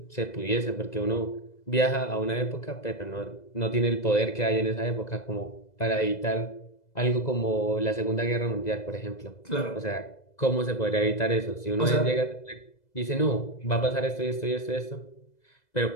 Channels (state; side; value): late; right; 2.0 ms